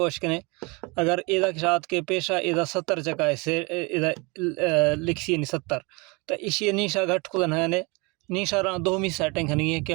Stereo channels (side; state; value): left; quieter; 28.0 dB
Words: वशकने अगर इधर के साथ के पेशा इधर 70 चका है से इधर लिखी नहीं 70 तो इसी निशा घट खुदा है निशा रहा दो मी सेटिंग नहीं है कि